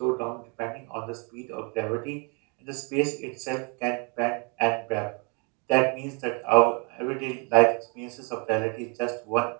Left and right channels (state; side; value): quieter; left; 34.4 dB